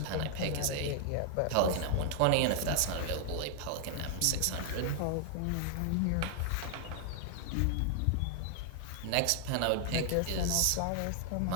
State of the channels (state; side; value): different; both; correlation 0.00